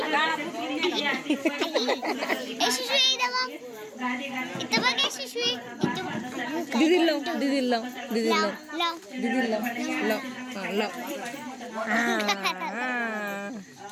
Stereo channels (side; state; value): both; identical; correlation 1.00